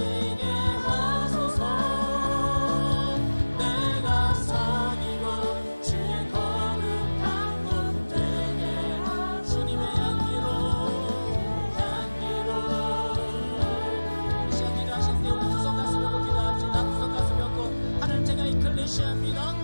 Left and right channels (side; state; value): both; inverted; correlation -1.00